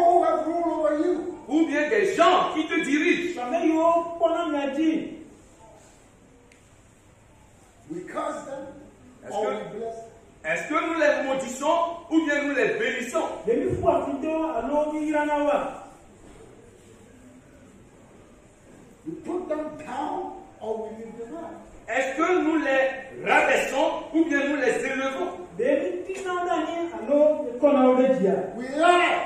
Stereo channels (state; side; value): identical; both; correlation 1.00